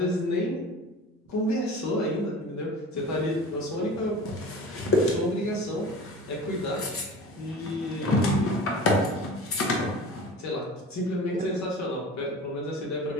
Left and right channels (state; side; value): normal; both; correlation 0.38